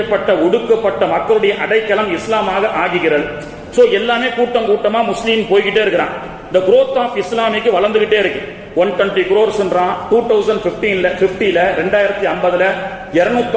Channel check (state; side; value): identical; both; correlation 1.00